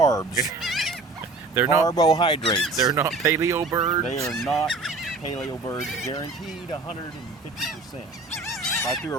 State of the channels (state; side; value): quieter; left; 3.4 dB